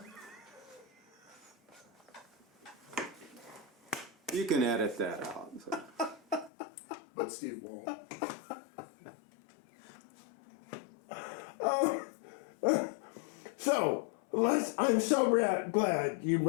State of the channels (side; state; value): right; drops out; at 6.5 s